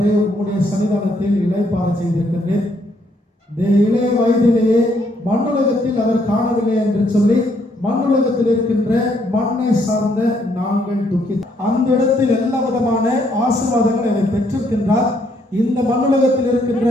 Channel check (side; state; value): both; normal; correlation 0.71